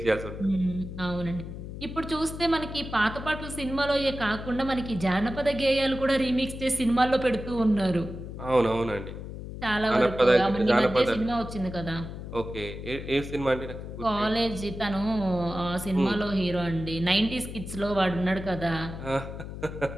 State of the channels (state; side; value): noise; left; hum, 9 dB below the sound